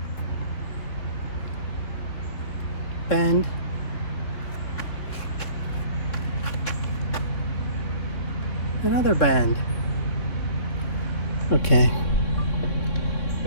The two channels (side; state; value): right; late; 3.6 ms